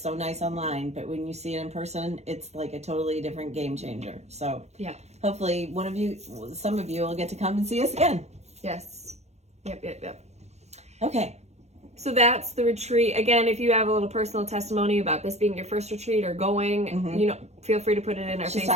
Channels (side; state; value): left; late; 0.32 ms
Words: nice online, but when you see it in person, it's like a totally different game changer. So yeah, hopefully some of you will get to come and see us again. Yes. Yep. Okay. So that's the retreat. Again, if you have a little personal testimony about this being your first retreat or going, feel free to put it in our She's